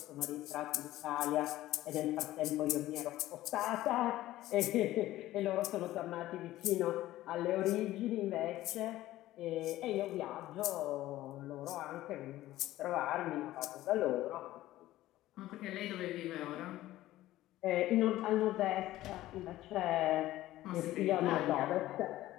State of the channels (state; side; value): quieter; right; 15.4 dB